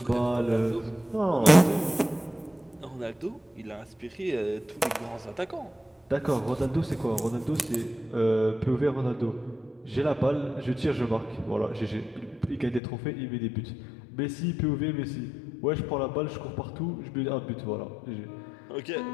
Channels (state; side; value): drops out; right; at 12.8 s